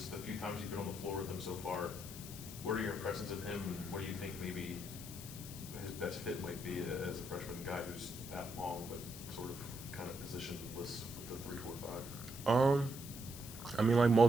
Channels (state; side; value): noise; left; hiss, 12 dB below the sound